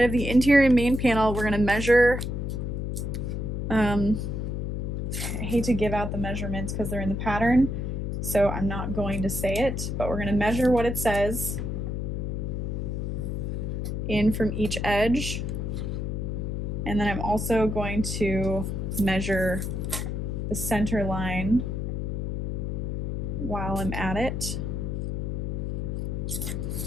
of the interior main panel, we're going to measure. I hate to give out the measurements because they're in the pattern. so I'm not going to say it, but we're going to measure what it says in from each edge. And then I'm also going to measure the center line while I'm at it.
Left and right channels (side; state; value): left; noise; hum, 2 dB below the sound